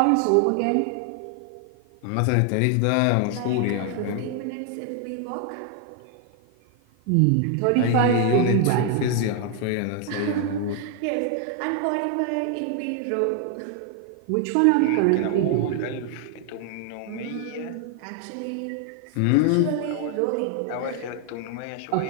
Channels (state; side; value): different; both; correlation 0.00